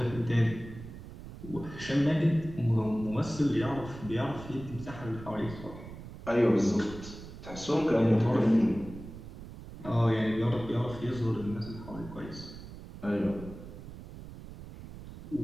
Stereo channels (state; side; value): noise; right; rumble, 13 dB below the sound